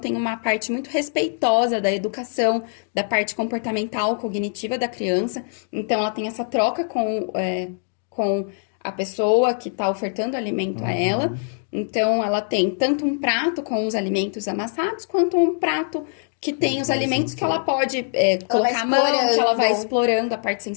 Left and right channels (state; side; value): silent; right; 64 dB below the other